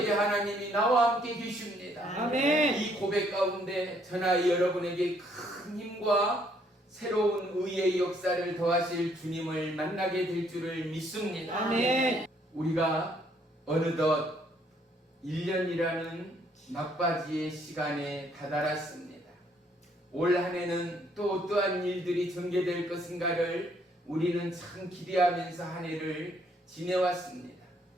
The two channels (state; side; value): normal; both; correlation 0.67